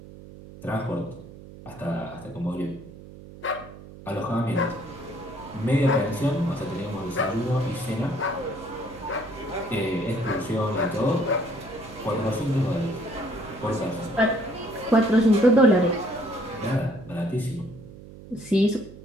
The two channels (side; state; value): right; noise; hum, 17 dB below the sound